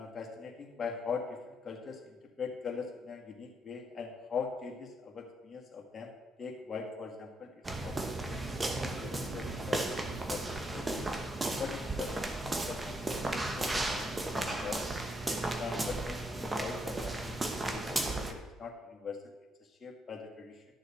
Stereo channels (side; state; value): both; normal; correlation 0.77